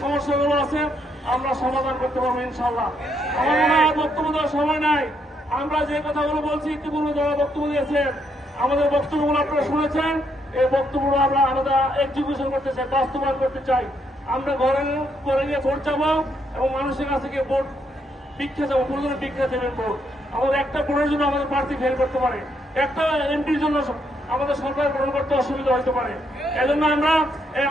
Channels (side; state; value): both; normal; correlation 0.75